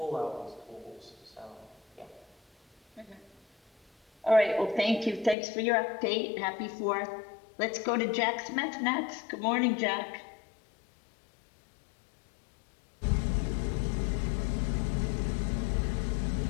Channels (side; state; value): right; drops out; at 5.4 s